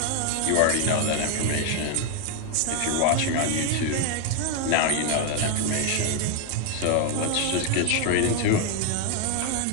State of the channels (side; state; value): both; different; correlation 0.01